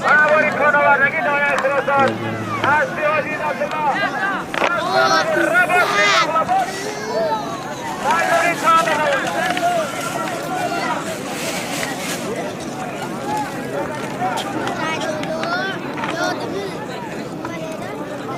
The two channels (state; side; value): identical; both; correlation 1.00